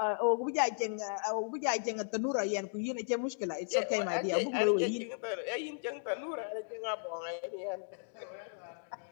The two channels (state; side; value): silent; right; digital silence